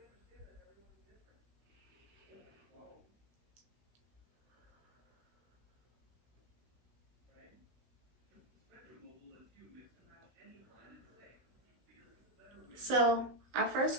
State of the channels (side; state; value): left; late; 16 ms